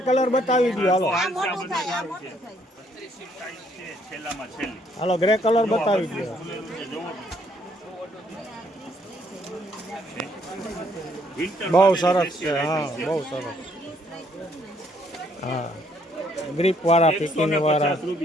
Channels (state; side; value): normal; both; correlation 0.67